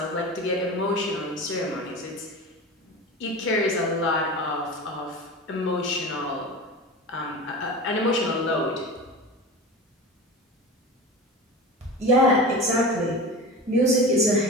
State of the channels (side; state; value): both; normal; correlation 0.31